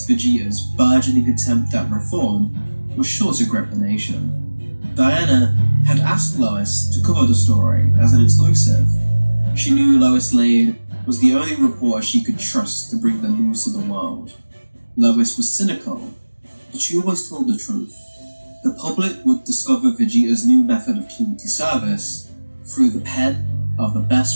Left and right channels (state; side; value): inverted; both; correlation -1.00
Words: Vegeta's burgeoning attempt at reform was sure to grip the nation. Diana had asked Lois to cover the story as an exclusive. She knew Lois Lane was the only reporter she could trust to bring the news to the world. Lois was cynical, but she always told the truth. The public would discover Vegeta's new method of community service through the pen of the